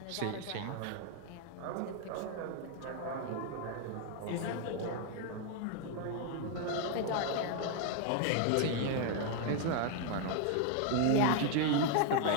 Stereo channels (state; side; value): different; both; correlation 0.00